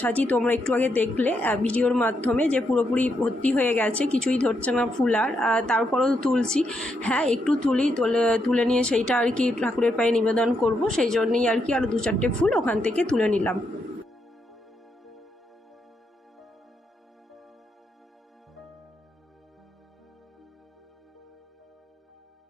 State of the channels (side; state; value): both; normal; correlation 0.80